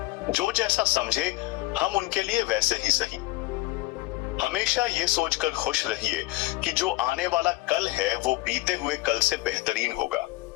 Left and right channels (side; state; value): right; quieter; 20.1 dB